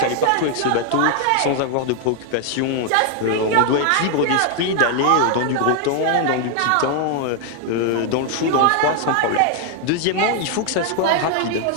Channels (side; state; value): both; different; correlation 0.00